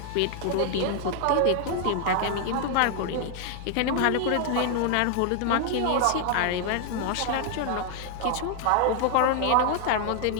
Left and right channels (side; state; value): both; different; correlation 0.00